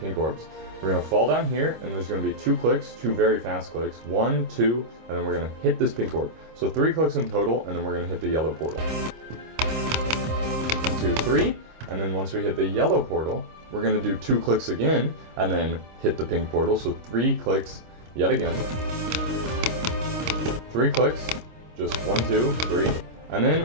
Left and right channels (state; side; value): late; left; 25 ms